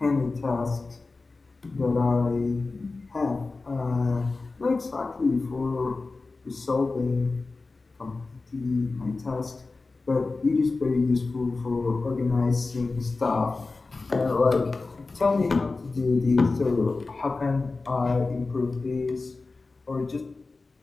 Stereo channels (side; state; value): right; quieter; 3.7 dB